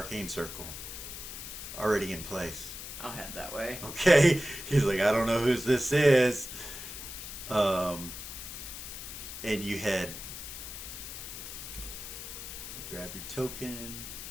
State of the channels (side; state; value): left; noise; hiss, 9 dB below the sound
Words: circle, already in place. I'll head that way. Okay, he's like, I don't know whose this is. And you head, grab your token.